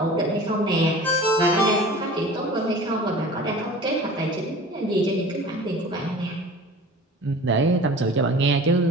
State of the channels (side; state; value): both; normal; correlation 0.40